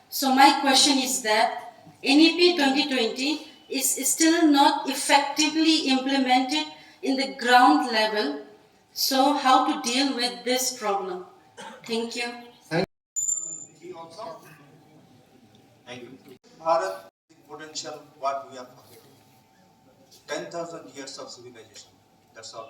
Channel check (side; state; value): both; identical; correlation 1.00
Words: So my question is that NEP 2020 is still not effectively implemented in the ground level. So how to deal with this problem? Thank you. Thank you. Bharat is potential what we are forgetting. 10,000 years of civilization. That's